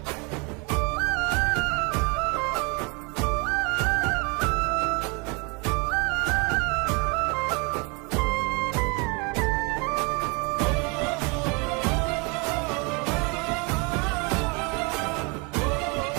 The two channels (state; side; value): quieter; left; 31.0 dB